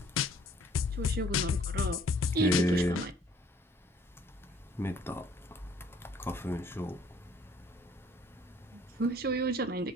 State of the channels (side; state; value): both; normal; correlation 0.59